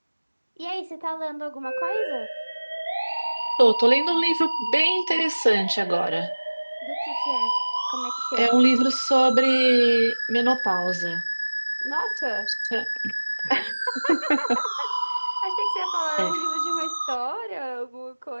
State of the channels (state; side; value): inverted; both; correlation -1.00